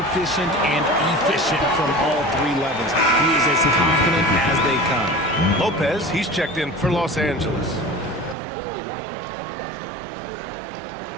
and efficient from all 3 levels. He is as confident as they come. Lopez, he's checked in for Los Angeles.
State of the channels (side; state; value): left; drops out; at 8.3 s